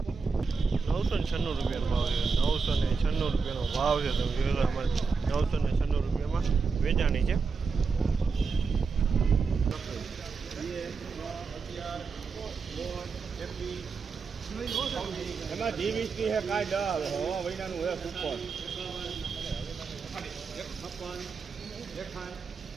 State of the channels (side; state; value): left; quieter; 5.0 dB